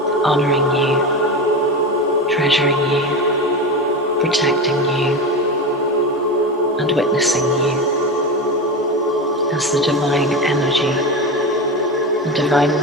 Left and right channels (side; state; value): both; normal; correlation 0.21